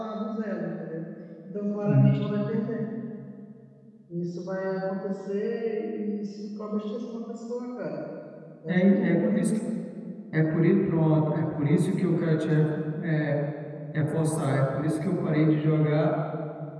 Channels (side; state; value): both; identical; correlation 1.00